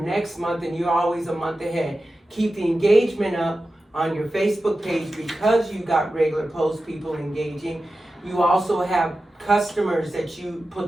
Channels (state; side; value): normal; both; correlation 0.93